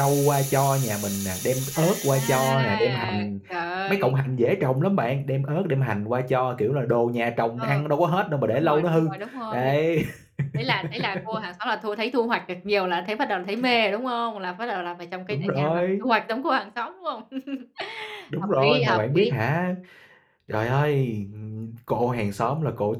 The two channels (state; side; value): identical; both; correlation 1.00